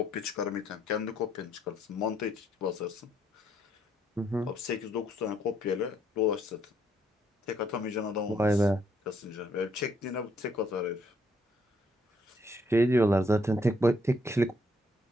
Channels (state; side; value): normal; both; correlation 0.70